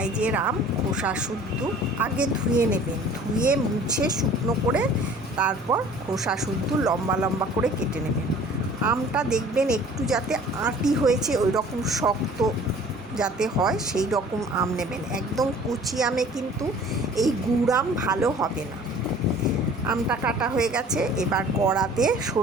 আম খোসা শুদ্ধ আগে ধুয়ে নেবেন, ধুয়ে মুছে শুকনো করে তারপর খোসা শুদ্ধ লম্বা লম্বা করে কেটে নেবেন। আমটা দেখবেন একটু যাতে আঁটি হয়েছে, ওই রকম শক্ত যাতে হয় সেই রকম আম নেবেন। একদম কুচি আমে কিন্তু এই গুড় আম ভালো হবে না। আমটা কাটা হয়ে গেছে। এবার কড়াতে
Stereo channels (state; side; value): normal; both; correlation 0.49